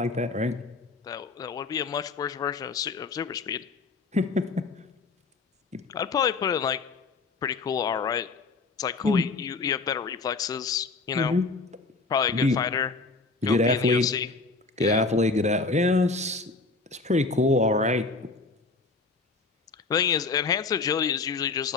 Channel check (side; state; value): right; quieter; 3.9 dB